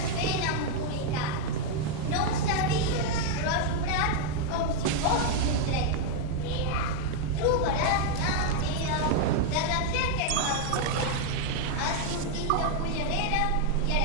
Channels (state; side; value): different; both; correlation 0.00